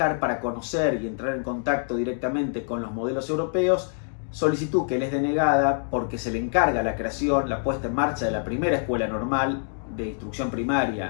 para conocer y entrar en contacto directamente con los modelos europeos, solicitud que le es denegada porque se le encarga la creación, la puesta en marcha de la primera escuela normal de instrucción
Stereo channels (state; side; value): silent; right; digital silence